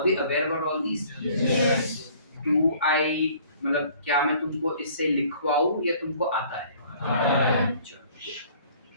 we aware about all these? Yes. Do I मतलब क्या मैं तुमको इससे लिखवाऊं या तुमको आता है?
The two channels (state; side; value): inverted; both; correlation -0.55